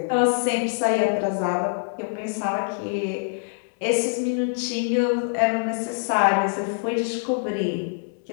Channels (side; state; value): right; silent; digital silence